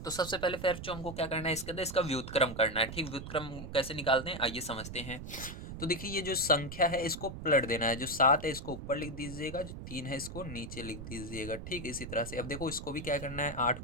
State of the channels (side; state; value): right; noise; rumble, 9 dB below the sound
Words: तो सबसे पहले फिर जो हमको क्या करना है, इसके अंदर इसका व्युत्क्रम करना है। ठीक, व्युत्क्रम कैसे निकालते हैं आइए समझते हैं। तो देखिए ये जो संख्या है इसको पलट देना है, जो 7 है इसको ऊपर लिख दीजिएगा, जो 3 है इसको नीचे लिख दीजिएगा। ठीक, इसी तरह से अब देखो इसको भी क्या करना है, 8